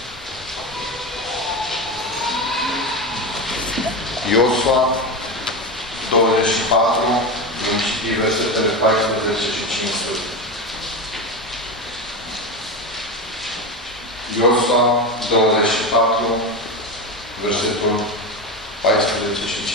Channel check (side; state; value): both; normal; correlation 0.19